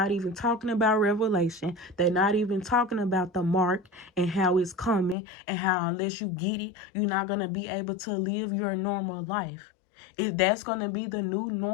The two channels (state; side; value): drops out; right; at 5.2 s